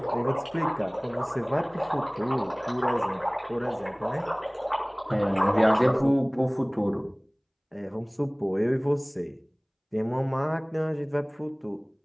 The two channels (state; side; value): identical; both; correlation 1.00